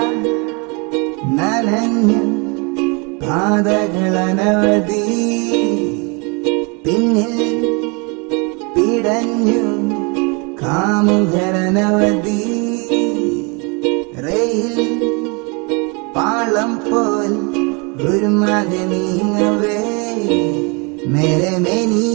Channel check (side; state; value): left; quieter; 31.6 dB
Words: നനഞ്ഞു പാതകളനവധി, പിന്നിൽ പിടഞ്ഞു കാമുകരനവധി. റെയിൽ പാളം പോൽ ഒരു മക നീങ്ങവേ, മേലെ മേനി